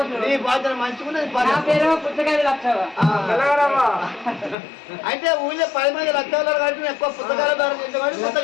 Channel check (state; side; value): drops out; right; at 4.5 s